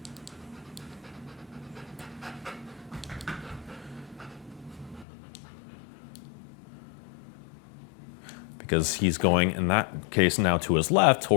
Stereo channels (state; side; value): drops out; right; at 5.1 s